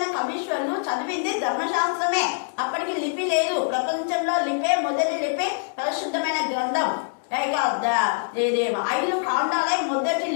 కవీశ్వరులు చదివింది ధర్మశాస్త్రమే. అప్పటికి లిపి లేదు. ప్రపంచంలో లిపే మొదటి లిపి పరిశుద్ధమైన గ్రంథం. 5 కాండాలే మొదటి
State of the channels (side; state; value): right; silent; digital silence